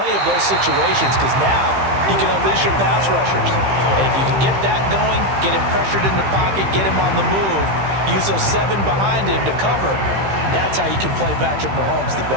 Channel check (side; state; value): left; late; 15 ms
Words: of those situations because now you can unleash your pass rushers. And if you can get that going, get him pressured in the pocket, get him on the move, use those 7 behind him to cover, that's how you can play Patrick Mahomes the